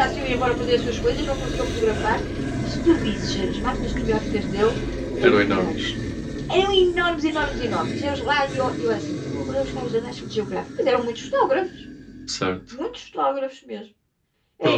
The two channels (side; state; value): both; identical; correlation 1.00